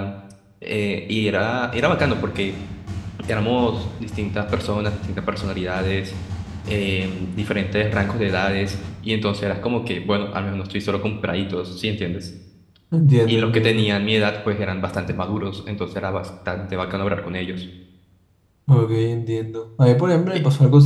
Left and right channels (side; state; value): both; identical; correlation 1.00